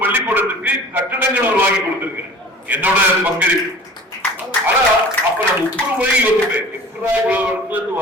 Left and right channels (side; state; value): both; normal; correlation 0.43